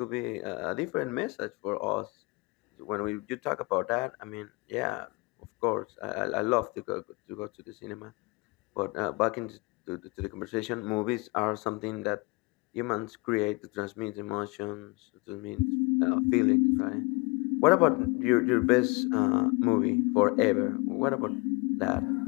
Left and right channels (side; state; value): right; quieter; 26.2 dB